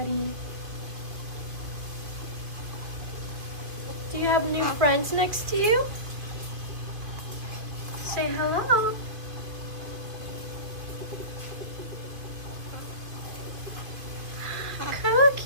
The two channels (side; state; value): left; late; 2.6 ms